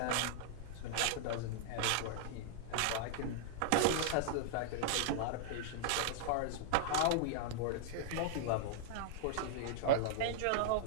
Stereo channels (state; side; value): different; both; correlation -0.01